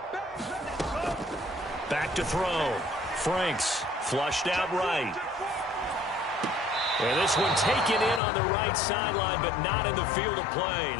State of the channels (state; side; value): drops out; right; at 8.2 s